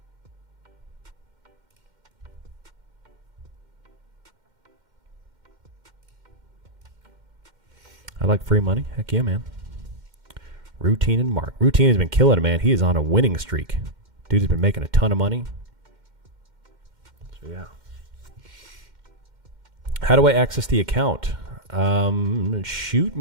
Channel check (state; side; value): late; left; 2.1 ms